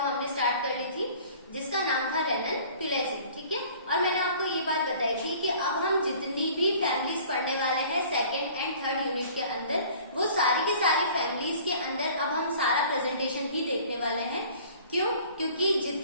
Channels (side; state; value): both; inverted; correlation -0.49